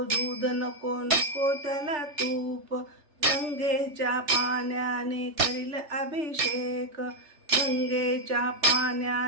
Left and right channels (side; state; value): left; late; 3.3 ms